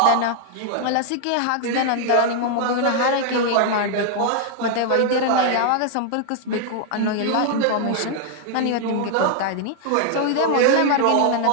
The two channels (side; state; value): both; different; correlation 0.00